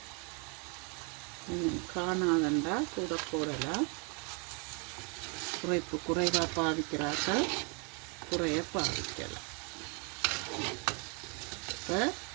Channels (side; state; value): left; quieter; 35.2 dB